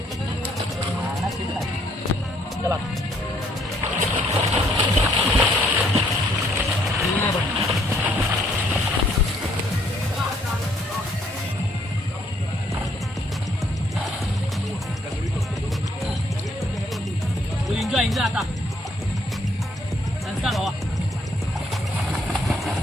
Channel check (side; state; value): both; normal; correlation 0.67